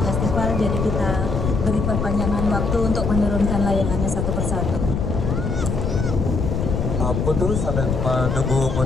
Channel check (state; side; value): noise; left; rumble, 1 dB below the sound